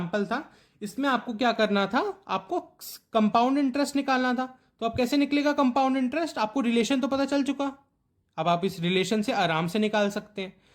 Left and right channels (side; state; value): both; identical; correlation 1.00